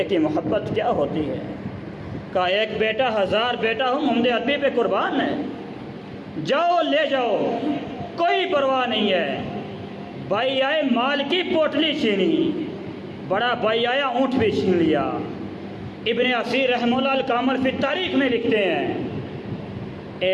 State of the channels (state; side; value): identical; both; correlation 1.00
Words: کی محبت کیا ہوتی ہے؟ کہا ایک بیٹا ہزار بیٹا ہو، محمد عربی پہ قربان ہے، جاؤ لے جاؤ، کوئی پرواہ نہیں ہے۔ بھائی آئے، مال کی پوٹلی چھینی، بڑا بھائی آیا، اونٹ بھی چھین لیا۔ ابن اسیر رحمہ اللہ الکامل فی تاریخ میں لکھتے ہیں،